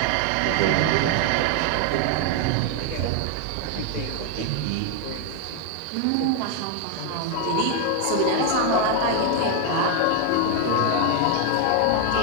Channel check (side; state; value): both; different; correlation 0.01